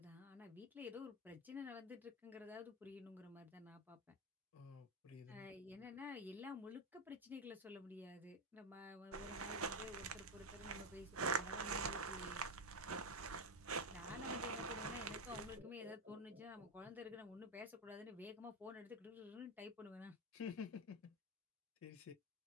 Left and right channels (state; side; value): normal; both; correlation 0.11